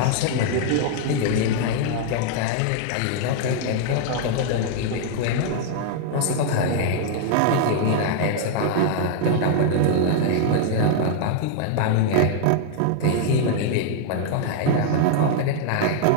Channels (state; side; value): different; both; correlation 0.00